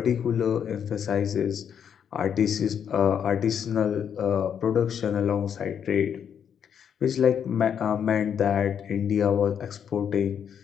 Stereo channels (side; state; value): right; quieter; 8.1 dB